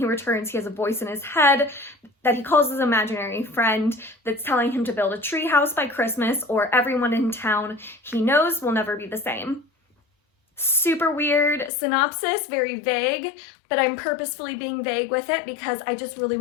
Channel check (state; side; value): drops out; right; at 11.7 s